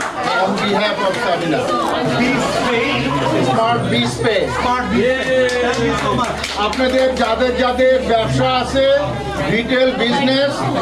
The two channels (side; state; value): both; identical; correlation 1.00